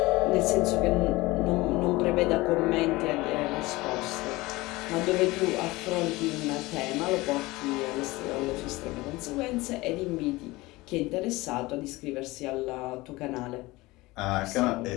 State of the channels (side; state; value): right; quieter; 20.8 dB